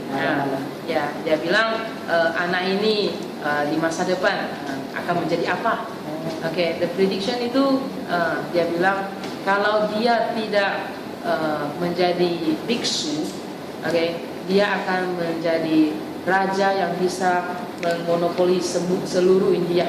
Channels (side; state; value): both; identical; correlation 1.00